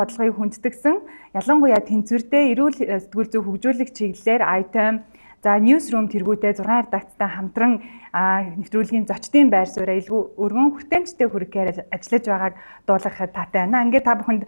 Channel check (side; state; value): both; inverted; correlation -1.00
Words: хүндэтгсэн, ялангуяа тэнцвэртэй эрүүл сэтгүүл зүйн хөгжүүлэх чиглэлээр item за newsroom тэргүүтэй 6 редакцтай хамтран нэвтрүүлгийн зочдын байр сууриа илүү өргөн хүртээмжтэй хүргэхээр ажиллаж байгааг дуулгахад таатай байна. Ингээд та бүхэнд